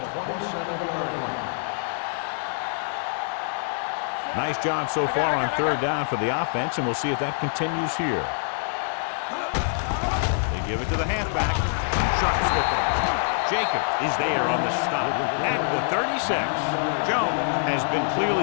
the 27-yard line. Nice job so far on 3rd down for the offense, and we'll see if that continues here. So we gonna take it. They give it to the halfback. Sharp skipper. Jacob is there on the stop at the 36. Jones has been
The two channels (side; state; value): right; silent; digital silence